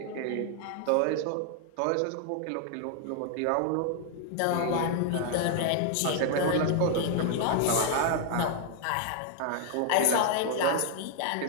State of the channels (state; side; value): different; both; correlation 0.00